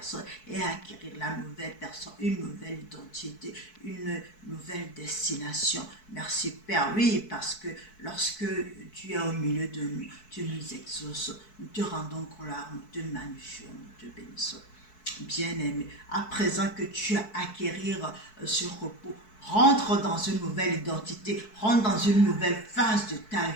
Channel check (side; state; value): right; late; 4.6 ms